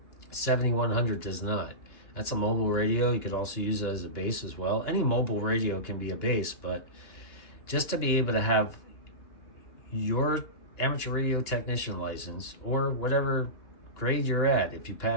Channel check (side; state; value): right; late; 2.9 ms